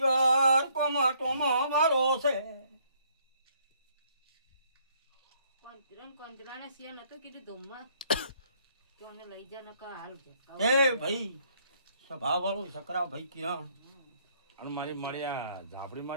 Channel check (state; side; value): inverted; both; correlation -0.66